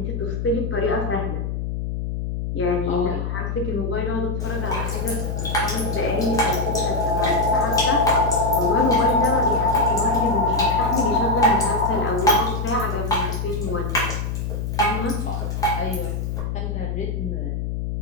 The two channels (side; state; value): left; noise; hum, 3 dB below the sound